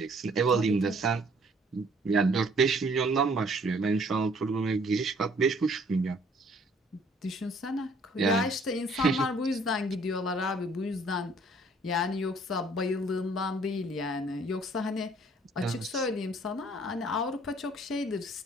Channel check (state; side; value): normal; both; correlation 0.59